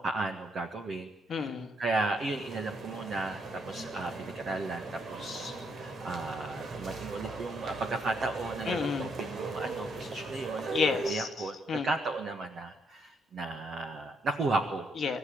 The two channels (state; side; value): normal; both; correlation 0.74